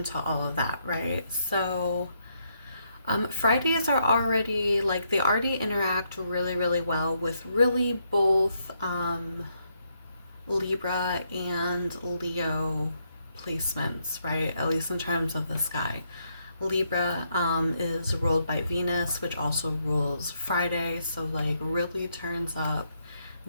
all of that, right? Fridays are already they already interact really well with really both Libra and Leo placements, right? At least in terms of the sky. Libra is ruled by Venus, which also rules Friday, so really turns up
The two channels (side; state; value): both; inverted; correlation -0.77